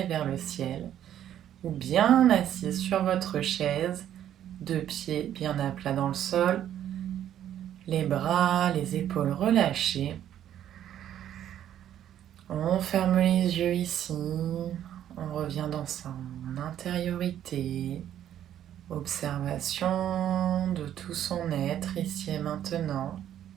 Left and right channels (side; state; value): left; quieter; 10.9 dB